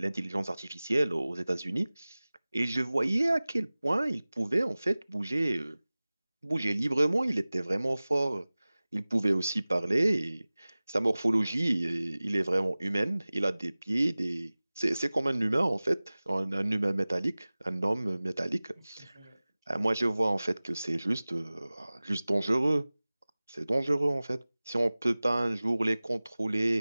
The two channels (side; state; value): both; inverted; correlation -0.99